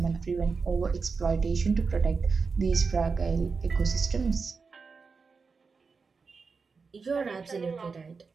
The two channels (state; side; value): quieter; left; 4.8 dB